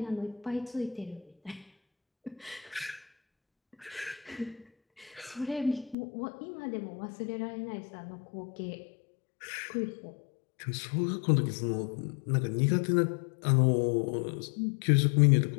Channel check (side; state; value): right; drops out; at 6.0 s